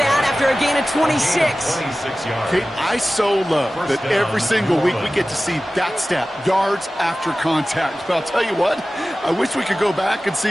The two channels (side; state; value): both; normal; correlation 0.96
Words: after a gain of 26. Kate, I so love that every single week we get to see that stat, yards after contact. But I'll tell you what, I wish we could go back and